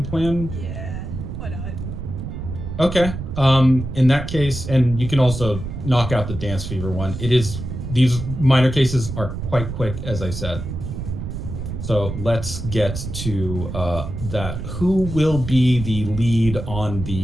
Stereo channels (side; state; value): right; noise; rumble, 7 dB below the sound